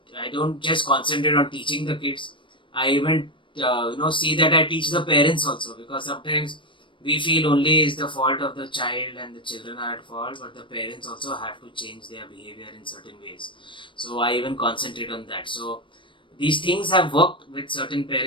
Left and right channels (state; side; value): late; right; 0.24 ms